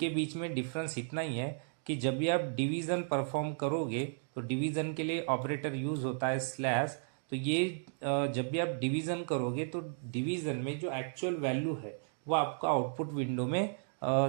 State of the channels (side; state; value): left; silent; digital silence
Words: बीच में डिफरेंस इतना ही है कि जब भी आप डिवीजन परफॉर्म करोगे तो डिवीजन के लिए ऑपरेटर यूज होता है स्लैश। तो ये जब भी आप डिवीजन करोगे तो डिवीजन में जो एक्चुअल वैल्यू है वो आपको आउटपुट विंडो में